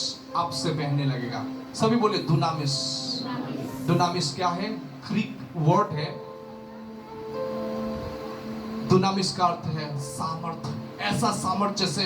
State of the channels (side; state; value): both; identical; correlation 1.00